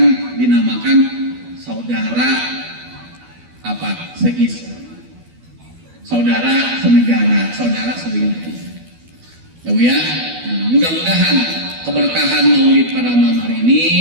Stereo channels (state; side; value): late; left; 12 ms